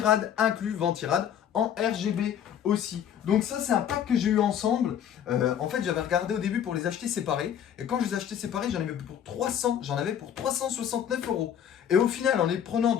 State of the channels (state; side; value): quieter; right; 9.3 dB